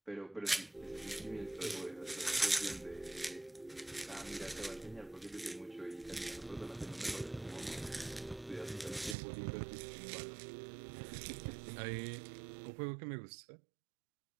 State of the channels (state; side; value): drops out; left; at 9.2 s